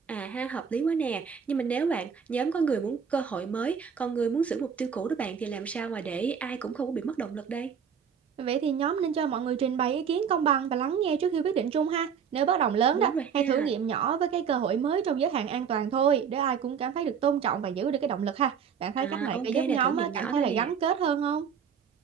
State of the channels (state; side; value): quieter; left; 7.2 dB